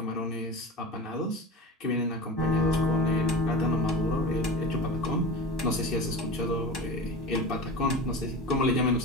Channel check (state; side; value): normal; both; correlation 0.31